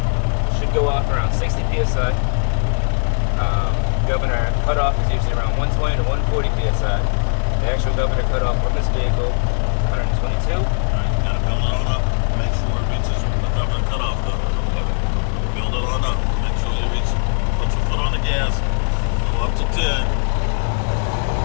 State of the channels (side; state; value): right; silent; digital silence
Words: should go off around 60 psi. Governor cutoff is usually around 120 to 140 psi. The actual governor cutoff on this vehicle, 122. All right, you gotta build it on up. Make sure it reaches the governor cutoff level. Build it on up. Make sure you reach. Put your foot on the gas. Go up to 10.